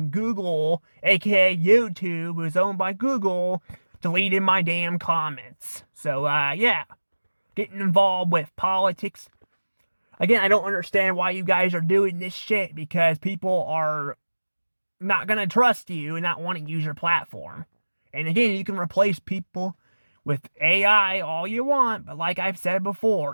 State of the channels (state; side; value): inverted; both; correlation -1.00